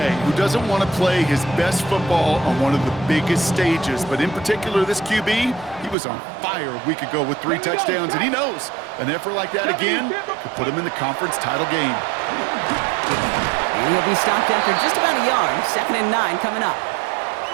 who doesn't want to play his best football on one of the biggest stages. But in particular, this QB, he was on fire a week ago with 3 touchdowns. And he knows an effort like that again could put him in the conference title game. And he'll be stopped after just about a yard. 2nd and 9 coming up.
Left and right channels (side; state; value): left; drops out; at 6.0 s